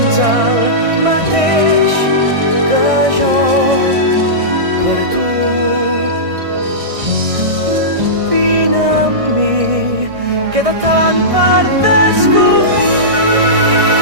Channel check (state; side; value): late; left; 1.6 ms